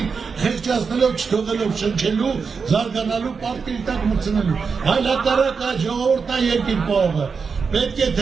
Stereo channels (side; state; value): left; quieter; 5.4 dB